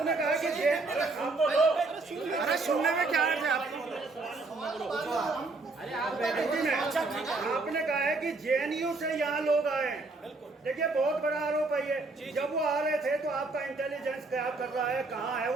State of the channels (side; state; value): left; quieter; 3.5 dB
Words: कहा कि अरे सुनने में क्या है आपको? आपने कहा है कि जेएनयू से यहाँ लोग आए हैं। देखिए, बहुत बड़ा आरोप है ये। जब वो आ रहे थे तो आपका इंटेलिजेंस क्या कर रहा है, कहाँ है